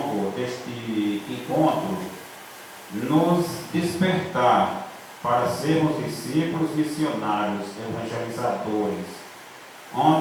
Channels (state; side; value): identical; both; correlation 1.00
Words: deste encontro, nos despertar para sermos discípulos missionários, evangelizadores,